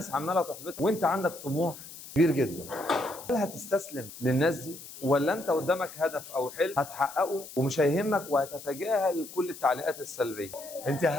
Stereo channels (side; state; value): left; noise; hiss, 15 dB below the sound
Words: عماله تحبطك وانت عندك طموح كبير جدا. هل هتستسلم للناس دي ولا انت قدامك هدف او حلم هتحققه ومش هيهمك وهتتجاهل كل التعليقات السلبيه؟ انت